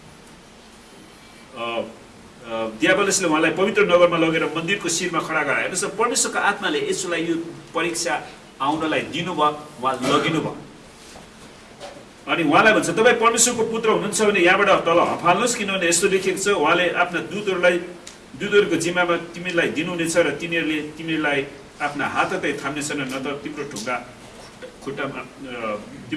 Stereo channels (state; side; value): identical; both; correlation 1.00